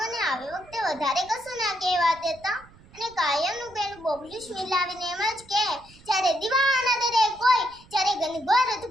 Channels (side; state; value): right; noise; rumble, 24 dB below the sound